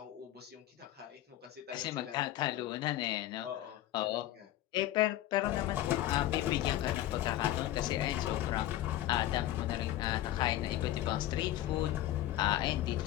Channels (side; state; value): right; quieter; 14.1 dB